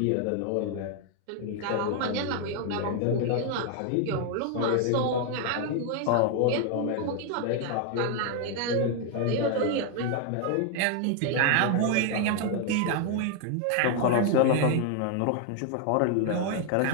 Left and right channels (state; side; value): different; both; correlation 0.00